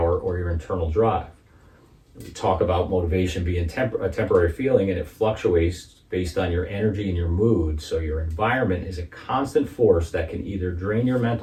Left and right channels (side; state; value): both; identical; correlation 1.00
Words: or your internal drive. We talk about motivation being a temporary feeling, and it fluctuates based on your energy and your mood. So your environment is a constant force that can either drain your